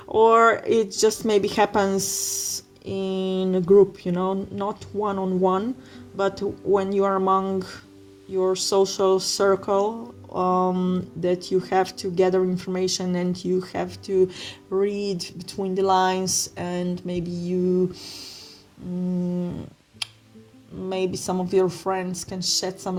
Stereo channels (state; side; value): identical; both; correlation 1.00